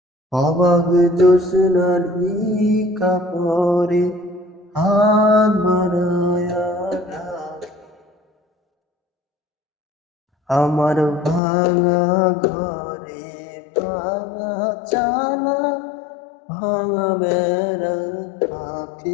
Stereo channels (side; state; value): right; drops out; at 11.4 s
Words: অবাক জোছনার কাপড়ে হাত বাড়ায়া ডাকে। আমার ভাঙা ঘরে ভাঙা চালা ভাঙা বেড়ার